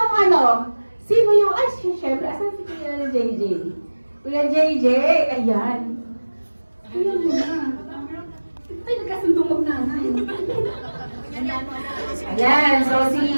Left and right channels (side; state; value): both; inverted; correlation -1.00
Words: sino yung, syempre, asan si Kuya JJ? Kuya JJ, ayan. Ayan na. Ay, nagkasundong mag-nanay. Ayan, so